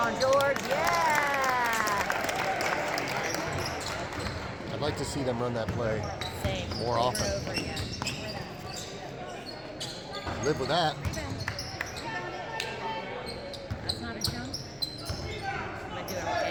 George. Yeah. I'd like to see them run that play more Over often. and over again. Live with that. That's not a jump. Am I doing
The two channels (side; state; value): both; identical; correlation 1.00